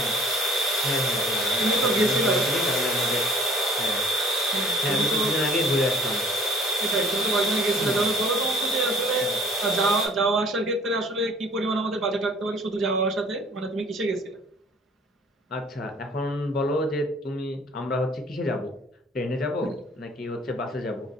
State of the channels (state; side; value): normal; both; correlation 0.53